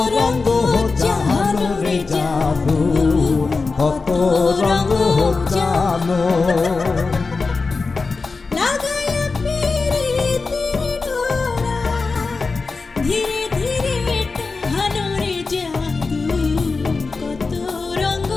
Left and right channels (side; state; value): right; quieter; 4.2 dB